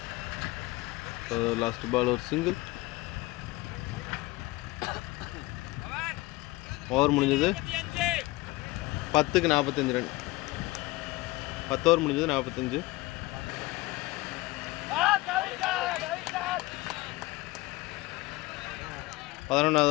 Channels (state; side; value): quieter; right; 20.4 dB